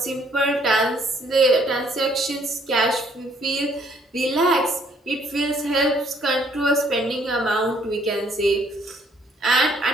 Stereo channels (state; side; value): normal; both; correlation 0.65